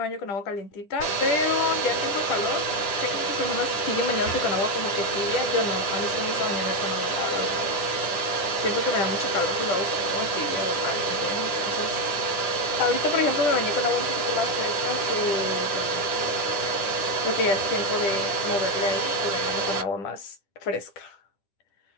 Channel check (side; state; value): right; late; 10 ms